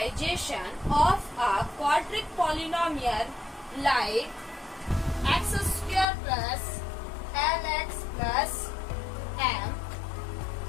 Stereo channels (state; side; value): drops out; right; at 6.1 s